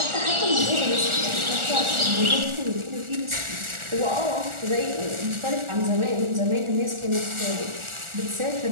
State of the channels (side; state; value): left; late; 1.4 ms